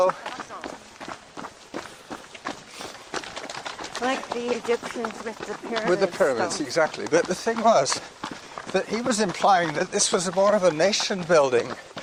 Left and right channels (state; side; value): identical; both; correlation 1.00